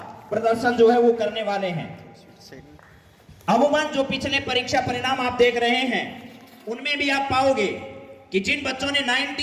प्रदर्शन जो है वो करने वाले हैं। अमूमन जो पिछले परीक्षा परिणाम आप देख रहे हैं उनमें भी आप पाओगे कि जिन बच्चों ने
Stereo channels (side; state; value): both; identical; correlation 1.00